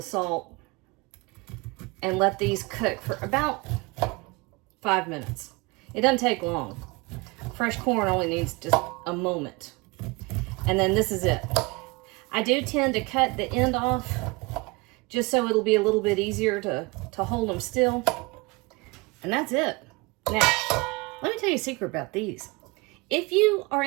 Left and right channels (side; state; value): left; quieter; 26.1 dB